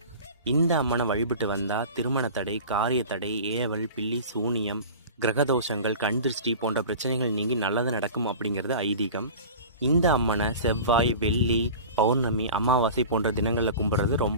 இந்த அம்மனை வழிபட்டு வந்தால் திருமண தடை, காரிய தடை, ஏவல், பில்லி, சூனியம், கிரகதோஷங்கள், கண் திருஷ்டி போன்ற பிரச்சனைகள் நீங்கி நல்லது நடக்கும் அப்படிங்கிறது ஐதீகம். இந்த அம்மனை செவ்வாய், வெள்ளி, பௌர்ணமி, அமாவாசை போன்ற தினங்களில் கும்பிட்றது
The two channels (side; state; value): both; inverted; correlation -0.36